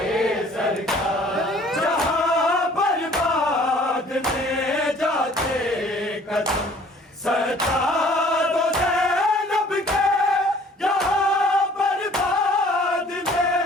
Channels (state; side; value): normal; both; correlation 0.54